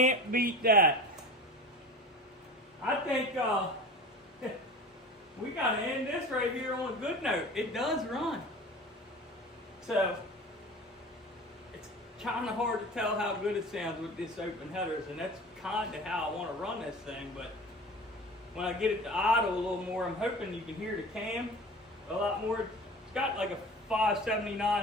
beat that. I think we gotta end this right here on a good note. It does run. So it's kind of hard to tell how good it sounds with this open headers, and that's kind of how I want to run this thing. But when I get it to idle a little more, I'm hoping you can hear the cam a lot more. It's got like a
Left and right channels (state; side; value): normal; both; correlation 0.36